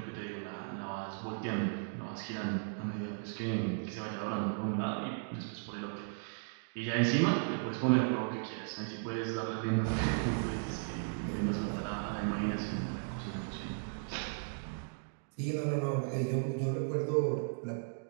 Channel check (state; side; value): silent; left; digital silence